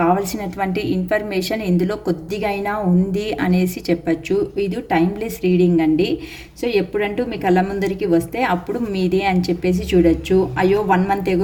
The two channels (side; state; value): both; identical; correlation 1.00